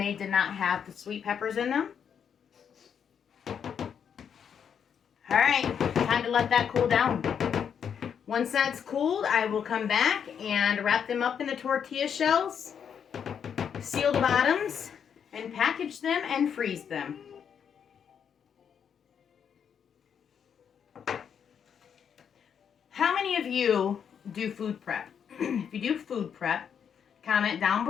did not have the sweet peppers in them. Alright, time to let that cool down. Once that's cooled, I will come back and wrap them up in the tortilla shells, seal the bottoms, and package them and freeze them. How many of you do food prep? If you do food prep, comment down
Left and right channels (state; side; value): quieter; right; 7.7 dB